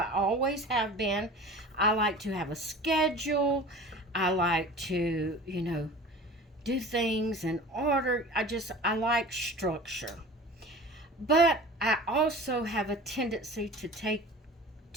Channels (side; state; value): both; normal; correlation 0.39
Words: always have been. I like to have a schedule. I like to, do things in order. I like structure. But I also have a tendency